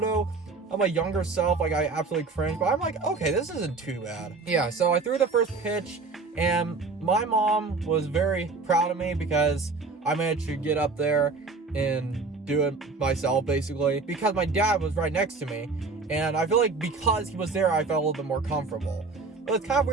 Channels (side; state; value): left; quieter; 4.1 dB